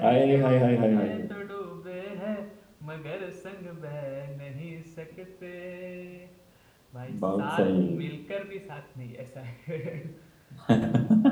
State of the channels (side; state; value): both; identical; correlation 1.00